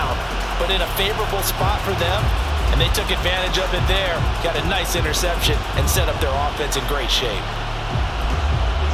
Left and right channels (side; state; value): both; identical; correlation 1.00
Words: but in a favorable spot for them. And they took advantage of it there, got a nice interception, and set up their offense in great shape.